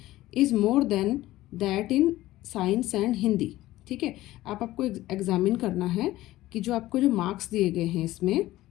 is more than that in science and Hindi. ठीक है, आपको एग्जामिन करना है कि जो आपको जो मार्क्स दिए गए हैं इसमें,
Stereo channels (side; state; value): right; quieter; 16.3 dB